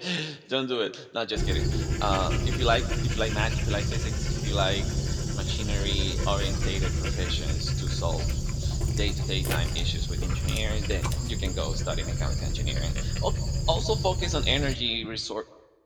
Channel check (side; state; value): both; identical; correlation 1.00